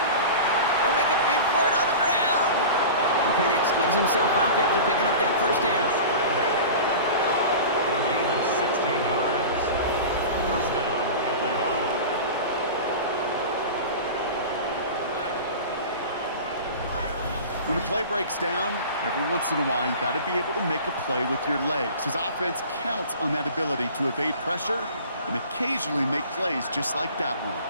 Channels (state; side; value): inverted; both; correlation -0.35